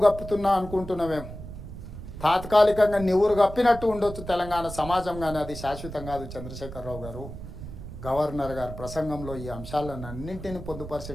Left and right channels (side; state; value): right; noise; rumble, 11 dB below the sound